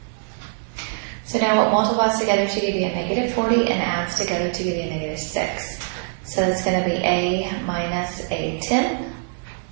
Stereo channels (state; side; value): silent; left; 63 dB below the other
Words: So now what multiplies together to give you a negative 40 and adds together to give you a negative 6. So it's going to be a minus a 10